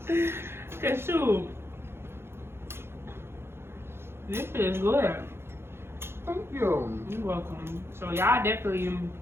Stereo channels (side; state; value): left; late; 0.12 ms